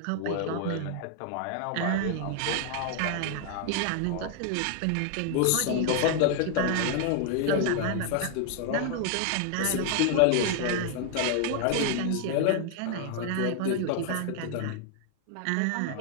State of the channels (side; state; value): both; different; correlation 0.00